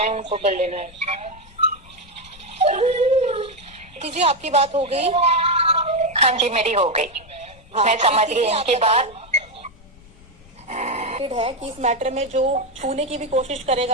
है उनको कर लेना है। जी आपकी बात हो गई? हाँ जी मेरी हो गई। हाँ, मैं समझ गई इनकी बात है कि इस मैटर में जो छूने की भी कोशिश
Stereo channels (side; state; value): left; noise; rumble, 24 dB below the sound